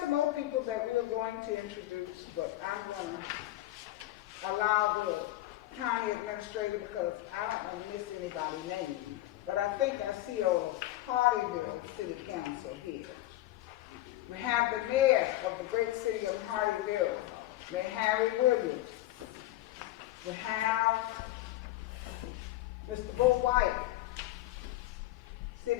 more people that we are going to introduce, but I'm going to allow the county administrator because I don't want to miss anybody's name. But I think I see old Hardyville City Council here. We have the mayor of the great city of Hardyville, Mayor Harry Williams. We have Mr. Bo White,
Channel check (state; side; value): quieter; right; 16.0 dB